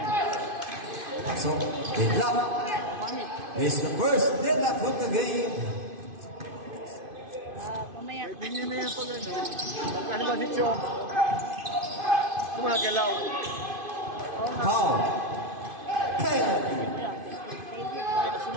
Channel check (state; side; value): late; left; 2.5 ms